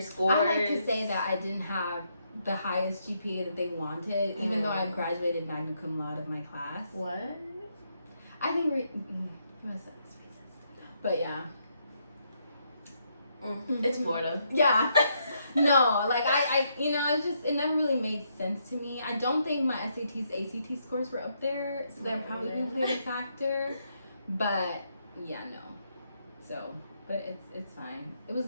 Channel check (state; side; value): inverted; both; correlation -0.76